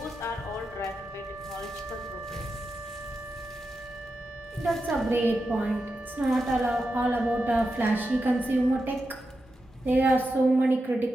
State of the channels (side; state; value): both; normal; correlation 0.89